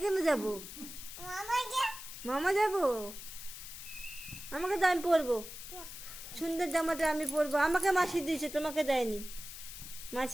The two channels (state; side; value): noise; left; hiss, 11 dB below the sound